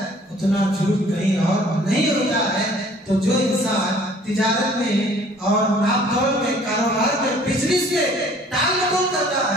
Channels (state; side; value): normal; both; correlation 0.54